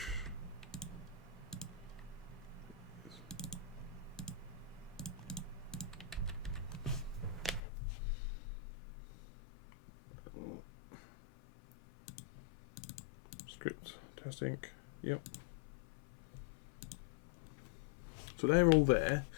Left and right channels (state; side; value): drops out; right; at 7.6 s